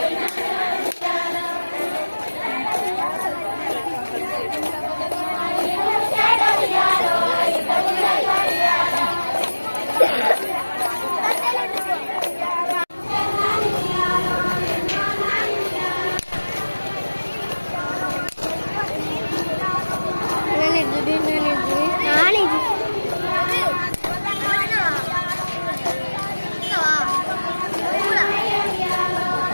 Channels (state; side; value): inverted; both; correlation -1.00